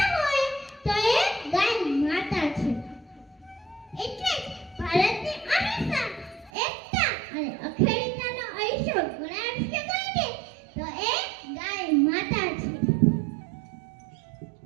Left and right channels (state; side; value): drops out; left; at 6.5 s